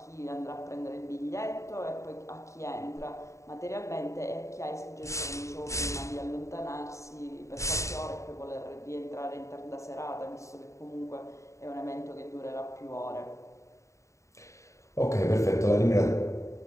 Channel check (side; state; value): right; late; 0.14 ms